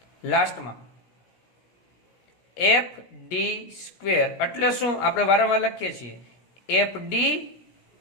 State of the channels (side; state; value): right; late; 17 ms